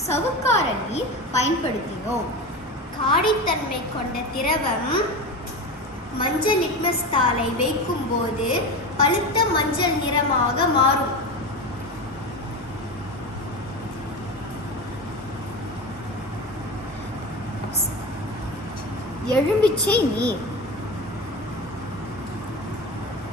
சவுக்கார நீர் பயன்படுத்தினோம். காடித்தன்மை கொண்ட திரவம் மஞ்சள் லிட்மஸ் தாளை வைக்கும் போது பழுத்த மஞ்சள் நிறமாக மாறும். எலுமிச்சை நீர்,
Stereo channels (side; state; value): both; normal; correlation 0.24